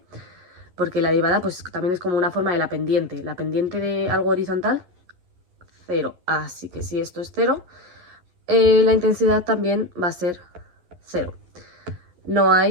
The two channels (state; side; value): late; left; 11 ms